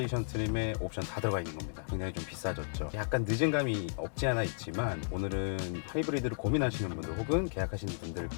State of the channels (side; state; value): right; silent; digital silence